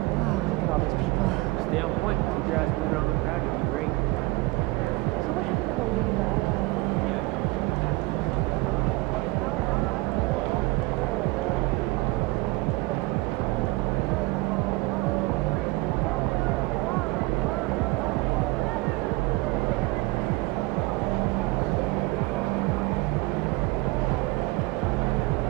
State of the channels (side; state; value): left; quieter; 22.6 dB